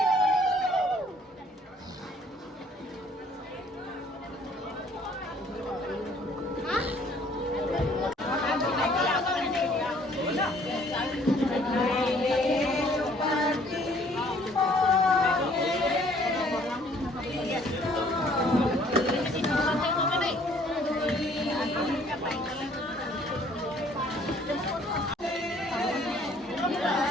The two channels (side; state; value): both; normal; correlation 0.59